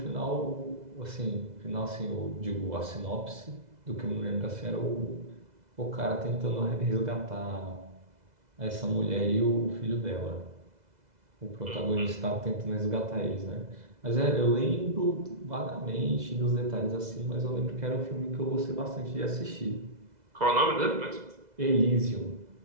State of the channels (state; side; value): late; left; 2.0 ms